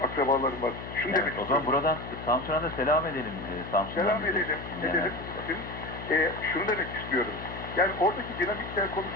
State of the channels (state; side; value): noise; left; hum, 10 dB below the sound